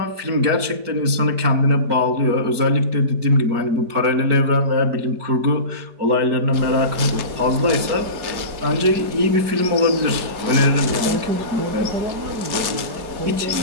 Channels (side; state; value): left; late; 4.5 ms